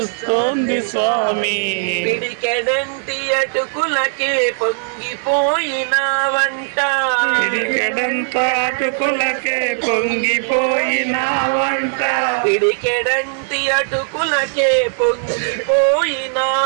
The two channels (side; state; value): left; silent; digital silence